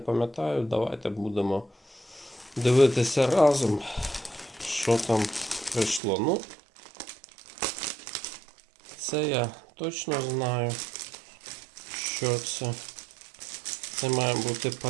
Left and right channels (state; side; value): drops out; left; at 6.0 s